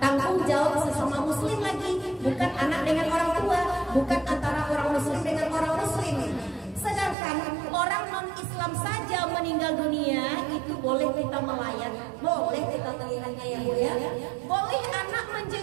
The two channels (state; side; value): drops out; left; at 7.2 s